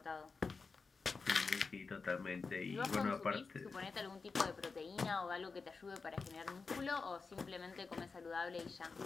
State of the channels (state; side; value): quieter; right; 4.5 dB